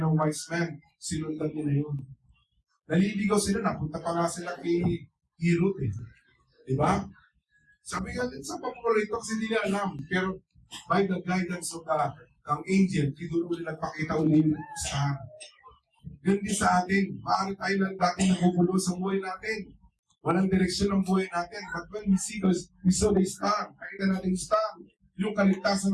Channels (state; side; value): identical; both; correlation 1.00